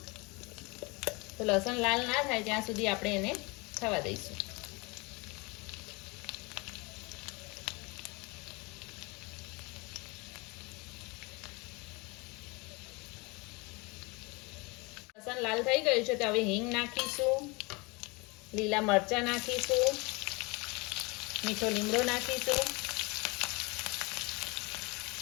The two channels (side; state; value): right; quieter; 27.1 dB